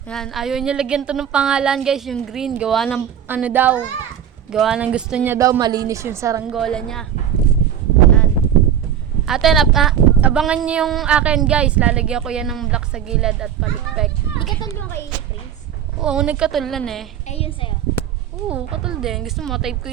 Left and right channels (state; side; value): quieter; left; 9.4 dB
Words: ayaw niya lagyan to ng pangalan guys, yung green. Gawa ng ano daw. Gawa ng gusto niya daw, malinis yung saranggola niya. Yan. Ate, abangan niyo yung akin guys. Lalagyan ko yan ng black sa gilid at palikpek. Di ka talong kay Prince? Oo, nagkatulan eh. Eh, yun sa'yo. Oo, katul din. Gusto mo, type ko